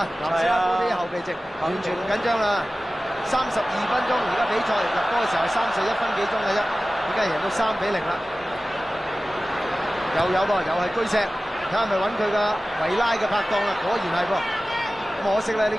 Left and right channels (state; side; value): normal; both; correlation 0.96